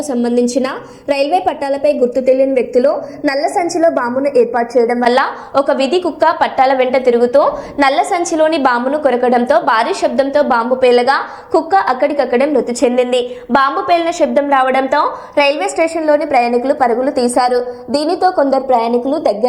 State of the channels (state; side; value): identical; both; correlation 1.00